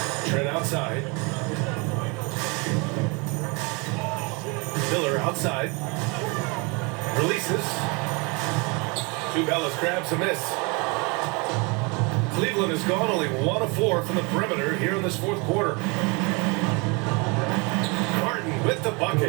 Trent outside. Miller outside. Releases. Tubelis grabs a miss. Cleveland has gone only 1 of 4 from the perimeter here in this fourth quarter. Martin with the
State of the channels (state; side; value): quieter; left; 29.8 dB